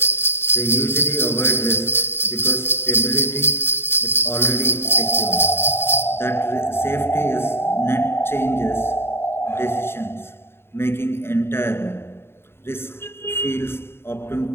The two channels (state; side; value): late; right; 0.11 ms